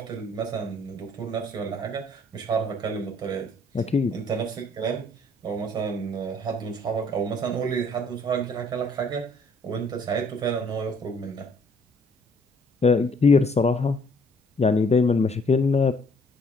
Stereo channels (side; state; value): both; normal; correlation 0.61